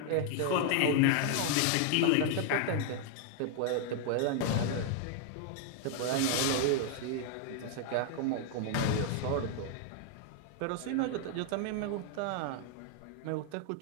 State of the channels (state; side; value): different; both; correlation 0.00